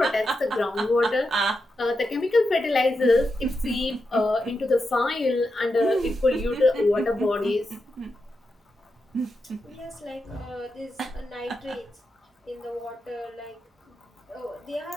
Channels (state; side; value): normal; both; correlation 0.87